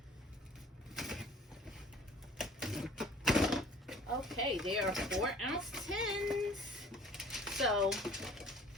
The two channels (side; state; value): both; normal; correlation 0.50